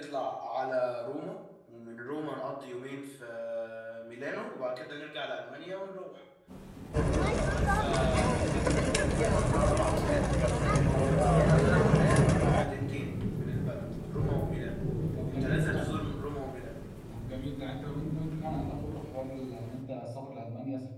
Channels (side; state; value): both; identical; correlation 1.00